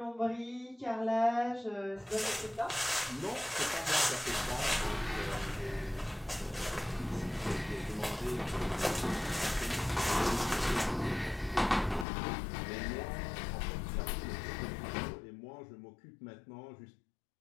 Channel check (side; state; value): right; drops out; at 12.1 s